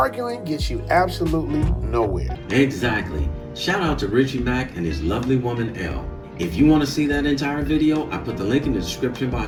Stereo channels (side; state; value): both; identical; correlation 1.00